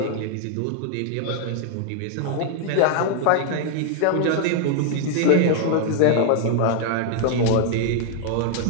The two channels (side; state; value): both; different; correlation 0.00